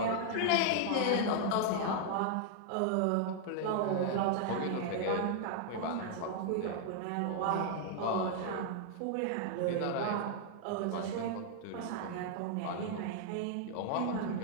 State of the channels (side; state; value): both; different; correlation 0.00